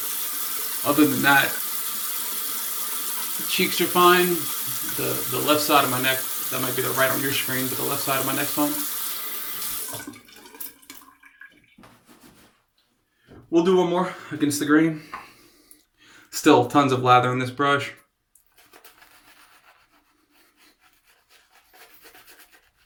Other than that, the cheeks are fine. The left side of my neck, that might be the right on your screen, but the left side of my neck's fine. We'll do one more against the grain. Still tons of lather in this brush.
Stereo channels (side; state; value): both; identical; correlation 1.00